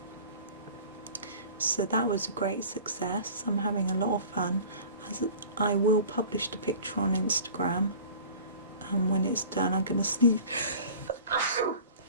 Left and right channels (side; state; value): both; inverted; correlation -0.43